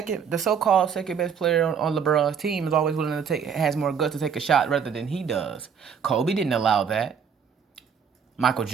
so-called second best player on LeBron's team is always willing to has more guts to take a shot rather than he does. Kobe didn't allow that. Michael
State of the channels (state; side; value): quieter; left; 7.0 dB